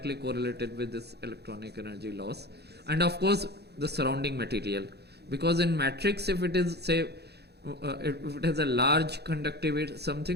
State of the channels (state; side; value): late; left; 0.48 ms